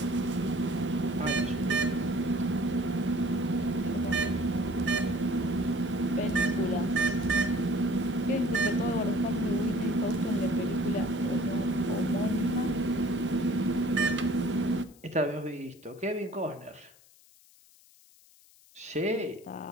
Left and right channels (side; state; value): left; noise; hiss, 27 dB below the sound